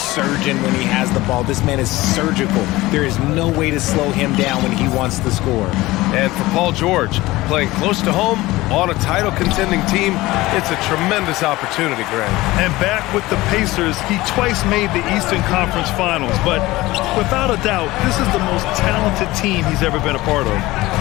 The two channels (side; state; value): right; quieter; 19.0 dB